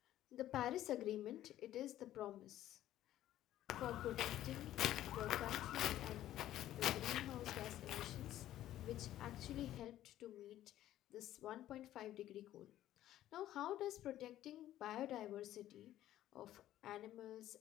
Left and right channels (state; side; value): quieter; right; 13.2 dB